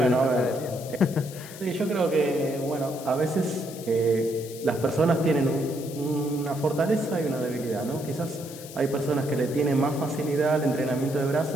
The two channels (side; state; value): left; noise; hiss, 15 dB below the sound